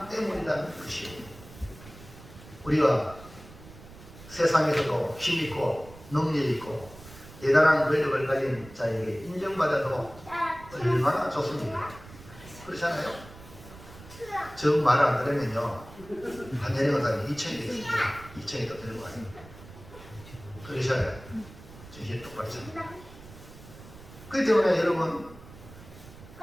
때문이라는 것이에요. 우리가 세상에서도 힘있고 능력있고 대단한 권력을 가진 자에게 인정받아도 얼마나 좋습니까? 그렇잖아요? 저 말 안 들으면요, 한 내려가다니 2천이 되겠습니다. 2천이 더 들고 가요. 그러셔야 정신 똑바로 차립니다. 그렇기 때문에 여러분,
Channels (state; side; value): noise; right; rumble, 18 dB below the sound